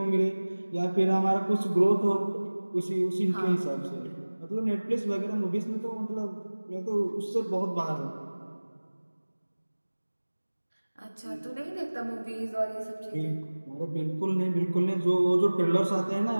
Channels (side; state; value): both; inverted; correlation -1.00